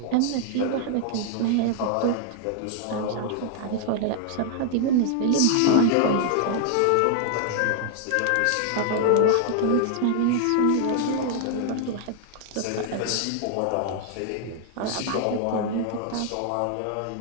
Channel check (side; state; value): both; different; correlation 0.00